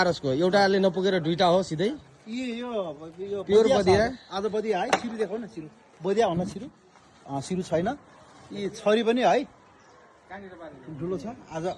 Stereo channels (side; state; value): both; identical; correlation 1.00